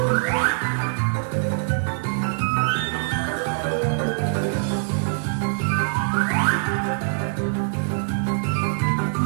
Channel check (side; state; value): left; silent; digital silence